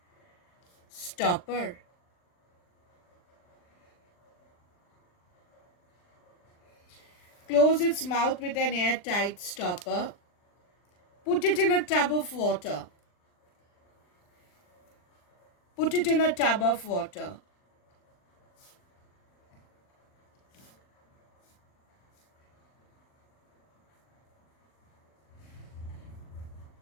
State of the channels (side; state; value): right; late; 39 ms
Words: stopper. Close its mouth with an airtight stopper. Put it in a tub of water. Put it in a tub of water.